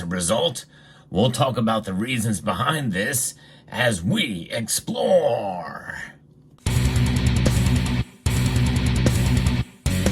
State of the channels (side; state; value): both; identical; correlation 1.00